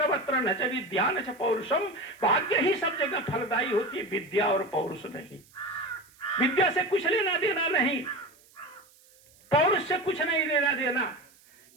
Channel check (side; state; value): right; noise; hiss, 28 dB below the sound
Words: न च विद्या न च पौरुषम, भाग्य ही सब जगह फलदायी होती है, विद्या और पौरुष नहीं। विद्या से कुछ लेना देना नहीं, पौरुष से कुछ नहीं लेना देना।